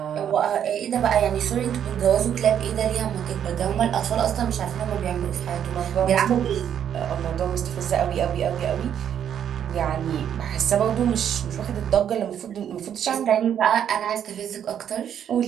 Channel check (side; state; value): left; quieter; 9.2 dB